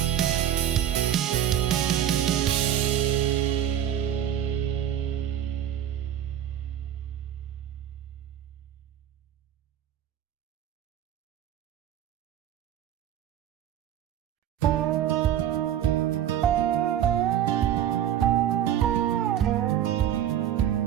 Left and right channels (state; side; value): quieter; left; 10.7 dB